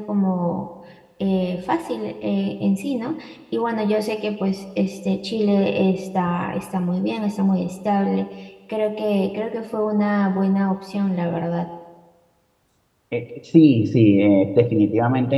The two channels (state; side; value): identical; both; correlation 1.00